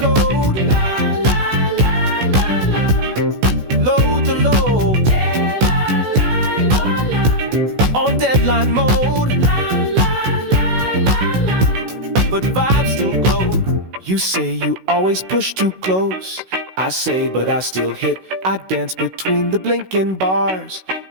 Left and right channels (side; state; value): left; late; 16 ms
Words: code. La la la la la. Load the load. La la la la. On deadline mode. But vibes still glow. You say you always push too close. I say, but I still hit. I dance between the blinking bars